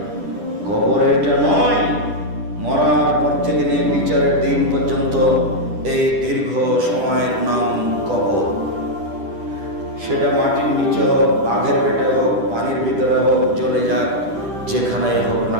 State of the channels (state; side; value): late; left; 10 ms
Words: কবর এটা নয়। মরার পর থেকে নিয়ে বিচারের দিন পর্যন্ত এই দীর্ঘ সময়ের নাম কবর। সেটা মাটির নিচে হোক, বাঘের পেটে হোক, পানির ভিতরে হোক, চলে যাক, যেখানেই হোক না